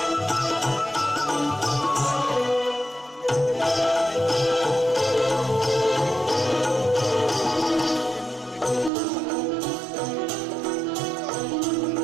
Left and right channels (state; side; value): drops out; left; at 8.9 s